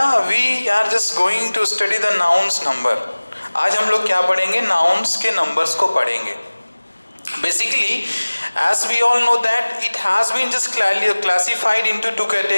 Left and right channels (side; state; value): both; inverted; correlation -1.00